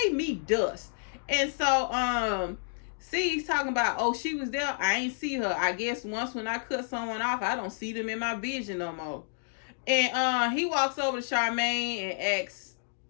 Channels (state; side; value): silent; right; digital silence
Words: me dust. And so see, he's talking about, oh, she was there, I ain't see her. I guess once when I cut someone off, I don't see them in my vision no more. And he walks over to Charmaine and asks,